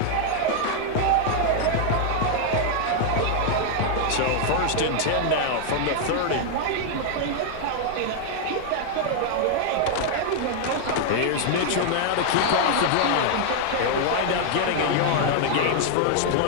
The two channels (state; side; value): different; both; correlation 0.00